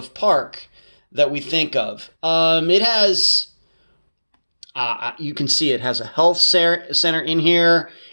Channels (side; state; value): both; inverted; correlation -1.00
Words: park that we think of. It has, you can see it has a health center in here.